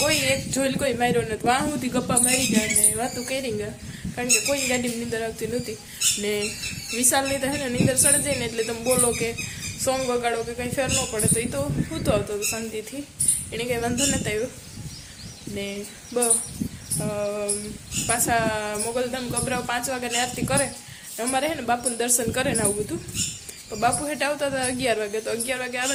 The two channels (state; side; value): identical; both; correlation 1.00